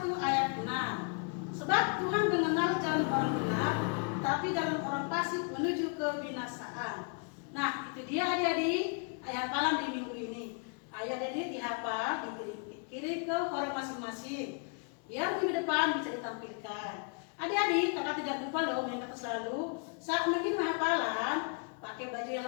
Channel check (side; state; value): right; quieter; 39.7 dB